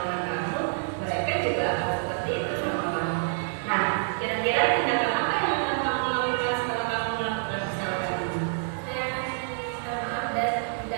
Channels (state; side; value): silent; left; 60 dB below the other